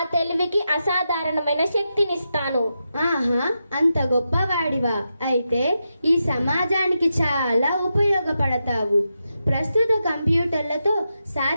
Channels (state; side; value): inverted; both; correlation -0.87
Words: తెలివికి అసాధారణమైన శక్తినిస్తాను. ఆహా, అంత గొప్పవాడివా? అయితే ఈ సమాజానికి చాలా ఉపయోగపడతావు. ప్రస్తుత కంప్యూటర్లతో